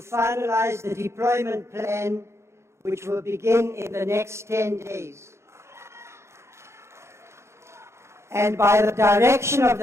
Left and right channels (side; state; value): left; late; 0.13 ms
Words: the deployment plan, which will begin in the next 10 days. And by the direction of